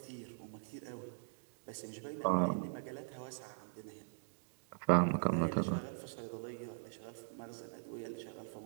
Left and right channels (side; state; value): left; silent; digital silence